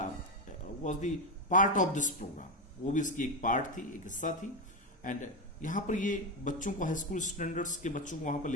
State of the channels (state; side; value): normal; both; correlation 0.11